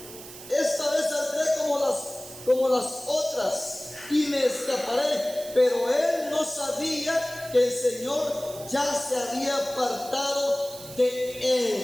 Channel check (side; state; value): right; noise; hiss, 15 dB below the sound